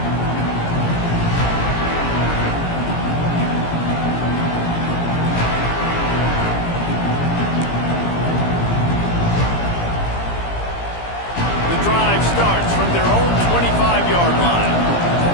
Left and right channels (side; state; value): right; late; 17 ms